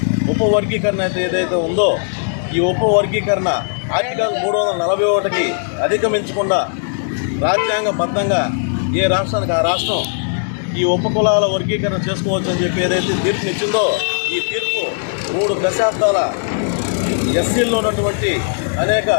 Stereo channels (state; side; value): silent; right; digital silence